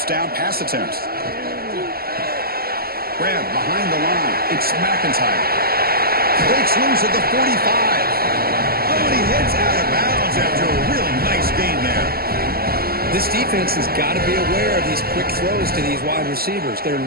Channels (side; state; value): left; late; 0.44 ms